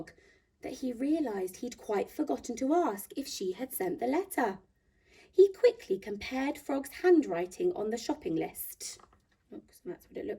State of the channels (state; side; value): identical; both; correlation 1.00